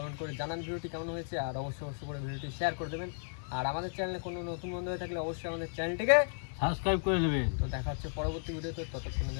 করে জানান ভিডিওটি কেমন হয়েছে, আর অবশ্যই করে ভিডিওটি শেয়ার করে দেবেন। আর আমাদের চ্যানেলে কোনো নতুন বন্ধু হয়ে থাকলে অবশ্যই আমাদের চ্যানেলটিকে সাবস্ক্রাইব করে দেবেন। তো দেখা হচ্ছে পরবর্তী ভিডিওতে। ততক্ষণের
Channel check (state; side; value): silent; right; digital silence